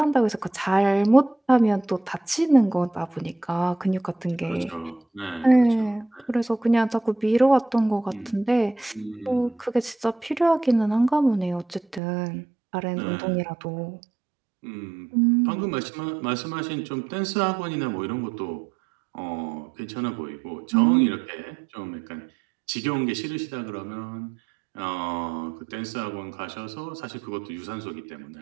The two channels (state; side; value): drops out; left; at 12.0 s